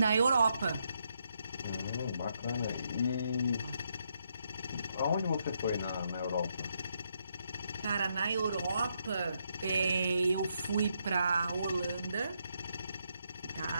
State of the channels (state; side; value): inverted; both; correlation -0.78